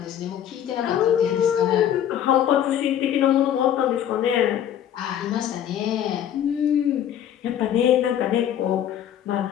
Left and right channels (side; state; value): right; quieter; 10.2 dB